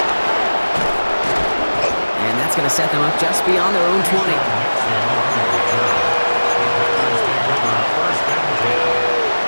And that's going to set them up just beyond their own 20.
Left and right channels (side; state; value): both; inverted; correlation -1.00